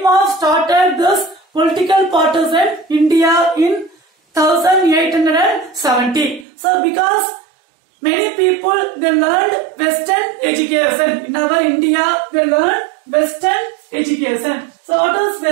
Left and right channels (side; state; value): left; drops out; at 6.5 s